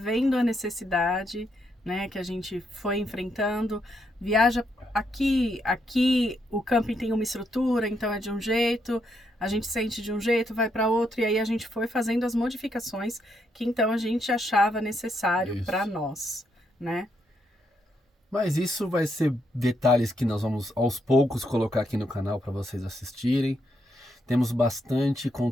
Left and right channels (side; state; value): both; normal; correlation 0.78